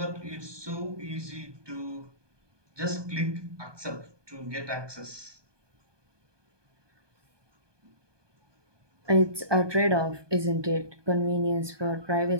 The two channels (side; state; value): left; late; 1.2 ms